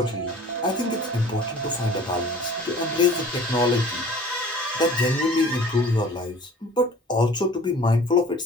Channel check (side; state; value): both; normal; correlation 0.47